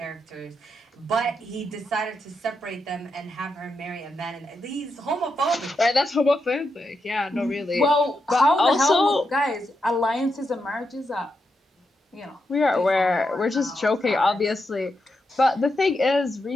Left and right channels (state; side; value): normal; both; correlation 0.85